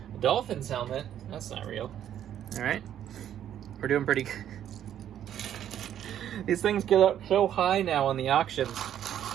A Dolphins helmet. That's not real. All right. We're doing pretty good. These things get up so high now on the auctions.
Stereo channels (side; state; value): left; quieter; 10.5 dB